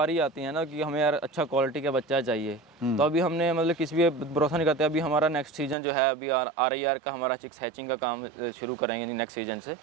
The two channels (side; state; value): left; drops out; at 5.8 s